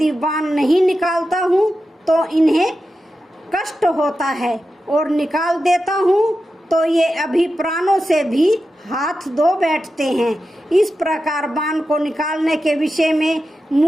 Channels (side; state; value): both; normal; correlation 0.91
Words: बाण नहीं निकालता हूँ तो इन्हें कष्ट होता है और निकाल देता हूँ तो ये अभी प्राणों से भी हाथ धो बैठते हैं। इस प्रकार बाण को निकालने के विषय में